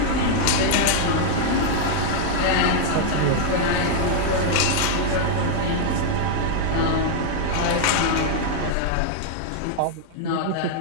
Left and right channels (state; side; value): different; both; correlation -0.01